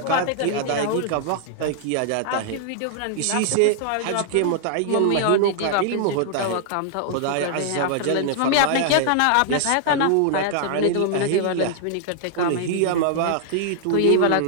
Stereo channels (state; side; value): different; both; correlation -0.01